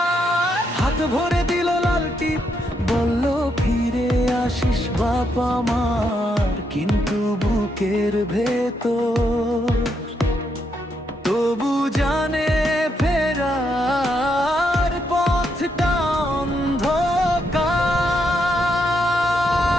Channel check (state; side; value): normal; both; correlation 0.78